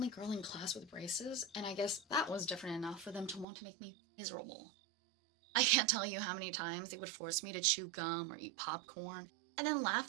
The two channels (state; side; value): drops out; left; at 3.5 s